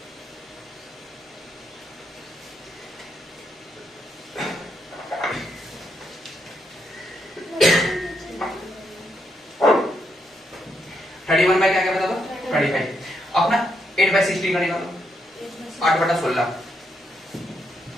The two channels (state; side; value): normal; both; correlation 0.79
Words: क्या क्या बता दो 25, अपना 8/16 का निकालो, 8/16